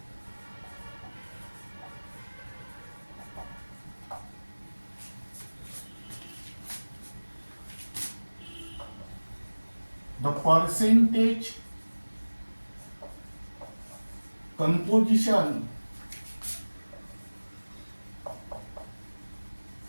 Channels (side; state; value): both; inverted; correlation -1.00